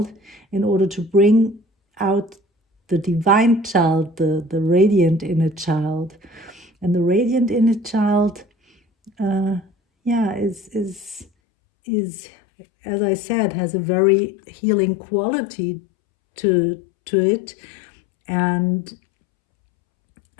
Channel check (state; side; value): drops out; right; at 11.2 s